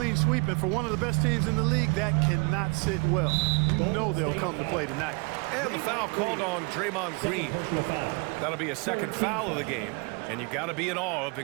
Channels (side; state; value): left; quieter; 31.1 dB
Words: sweep, and for one of the best teams in the league, that cannot sit well. You know they'll come to play tonight. And the foul called on Draymond Green. That'll be a second foul of the game. And you got to be in awe of